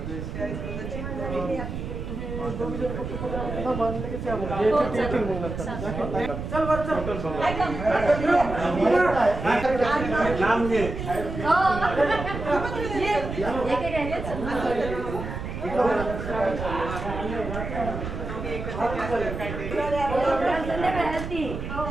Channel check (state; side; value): noise; right; rumble, 6 dB below the sound